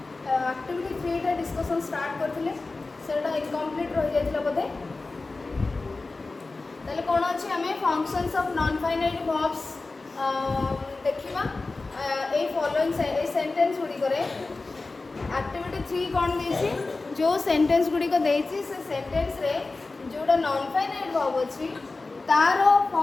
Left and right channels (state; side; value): quieter; right; 3.5 dB